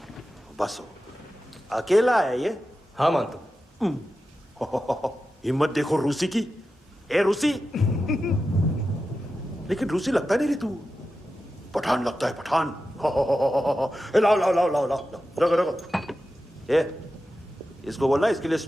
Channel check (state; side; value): normal; both; correlation 0.92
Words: बसो। अकेला है ये? हाँ मानतो। हिम्मत देखो रूसी की। ए रूसी। लेकिन रूसी लगता नहीं रे तू, पठान लगता है, पठान। लाओ लाओ लाओ लाओ लाओ, रखो रखो। ए इसको बोलना इसके लिए